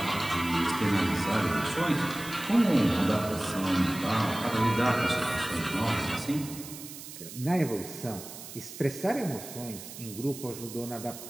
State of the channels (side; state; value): right; noise; hiss, 13 dB below the sound